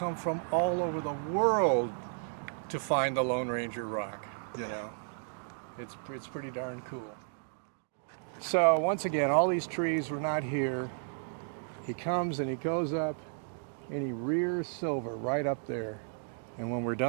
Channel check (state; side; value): silent; left; digital silence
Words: from all over the world to find the Lone Ranger Rock. You know, it's pretty darn cool. So once again, all these trees were not here. He comes and he goes up and he rears Silver right up there. And when we're